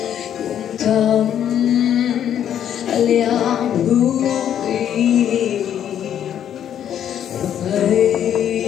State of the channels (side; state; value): right; quieter; 9.8 dB